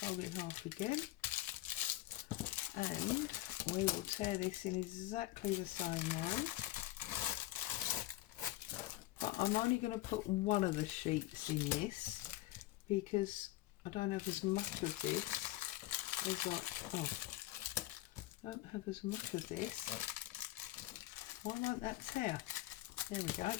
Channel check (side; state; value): right; quieter; 16.5 dB